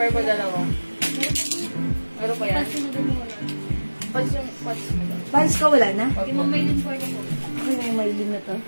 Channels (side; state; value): both; inverted; correlation -1.00